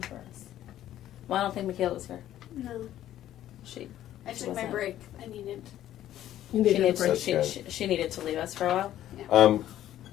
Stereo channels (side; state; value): right; quieter; 12.5 dB